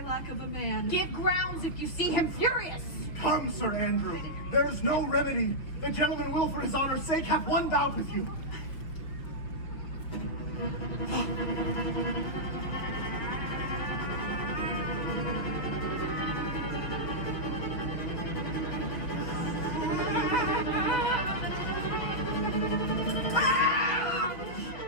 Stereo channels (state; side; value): late; right; 6.0 ms